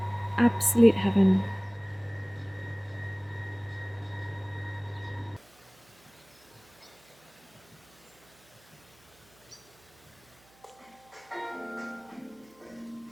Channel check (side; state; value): right; noise; hum, 29 dB below the sound